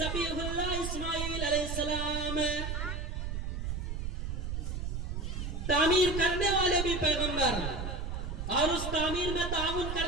اللہ اسماعیل علیہ السلام، تعمیر کرنے والے بھی پیغمبر اور اس تعمیر میں تعاون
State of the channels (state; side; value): noise; right; rumble, 3 dB below the sound